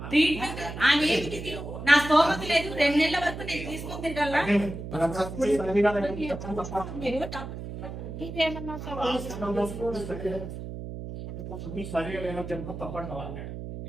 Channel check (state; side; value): noise; right; hum, 9 dB below the sound